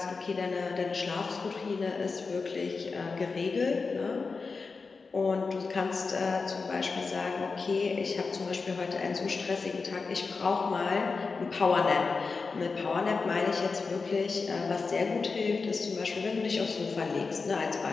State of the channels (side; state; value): right; quieter; 4.5 dB